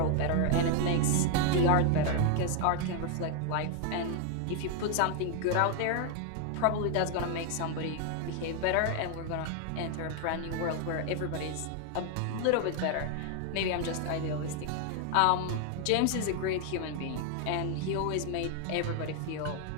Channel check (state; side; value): different; both; correlation 0.00